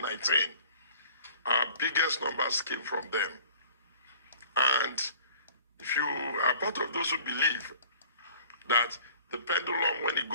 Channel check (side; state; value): both; inverted; correlation -0.51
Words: our biggest numbers came from them. And if you are part of those who believe that the pendulum, when it